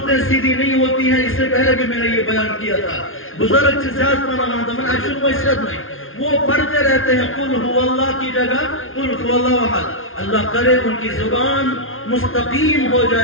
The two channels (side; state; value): right; late; 0.60 ms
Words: سیدھی نہیں ہوتی ہیں، اس سے پہلے بھی میں نے یہ بیان کیا تھا، بزرگ سے زیادہ مانا مانتا میں عشق و عشرت نہیں، وہ پڑھتے رہتے ہیں قل هو اللہ کی جگہ قل هو اللہ احد، اللہ کرے ان کی زبان مستقیم ہو